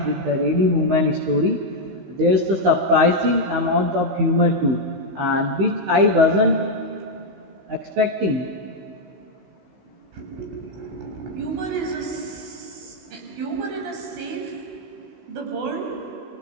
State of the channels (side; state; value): left; late; 16 ms